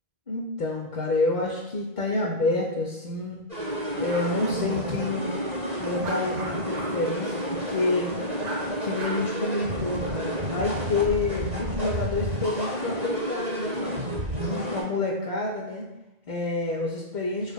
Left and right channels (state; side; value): late; left; 1.9 ms